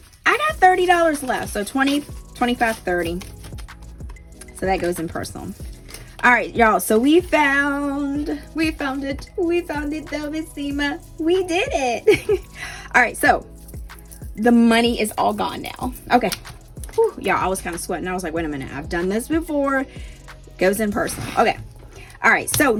I got $30 left. So 20, 25, 30. So that goes in personal. All right, y'all. So we found it. We found it, Bellissima. We did it. All right. So the money is all gone now. Okay. Whew, y'all, I was kind of sweating. I was like, wait a minute. I've done this before. Goes in personal. Okay. All right. So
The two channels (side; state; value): both; identical; correlation 1.00